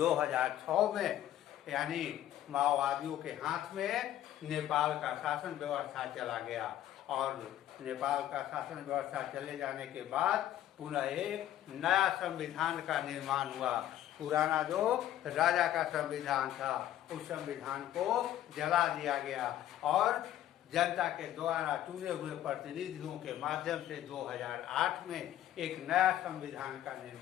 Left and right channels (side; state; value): right; quieter; 12.5 dB